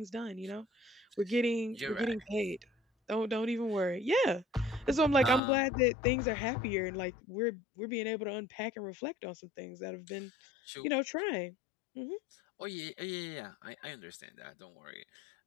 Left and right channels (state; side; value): drops out; right; at 5.4 s